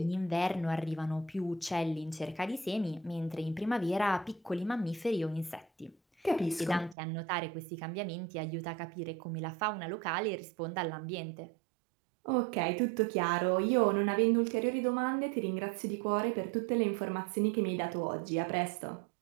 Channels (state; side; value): drops out; left; at 7.0 s